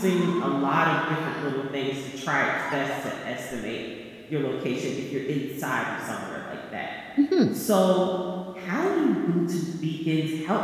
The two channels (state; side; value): identical; both; correlation 1.00